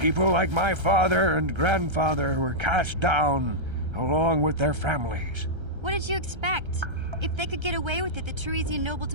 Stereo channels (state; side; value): late; left; 1.3 ms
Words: like my father and grandfather were cast down, along with their families. What did you expect? If they could get away with it, the Teresian nobles